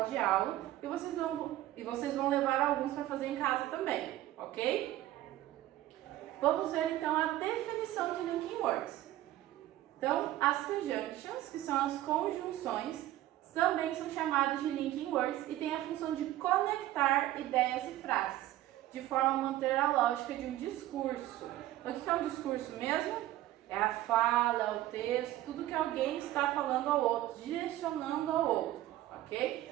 de aula e vocês vão levar alguns para fazer em casa também, ok? Vamos ver então a definição de linking words. Então, as conjunctions, que são as conjunções, também são chamadas de linking words e têm a função de conectar ideias e frases, de forma a manter a lógica de um discurso. Então, o que é um discurso mesmo? É a fala, é o texto, tudo que alguém está falando ao outro, direcionando ao outro, ok?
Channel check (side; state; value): left; quieter; 14.7 dB